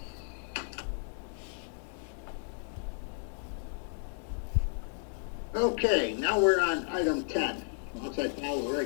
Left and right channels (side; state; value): right; silent; 56 dB below the other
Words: Okay, now we're on item 10. Once I follow the